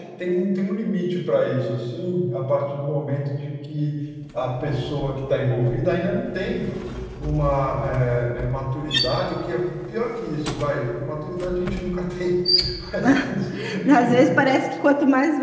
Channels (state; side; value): identical; both; correlation 1.00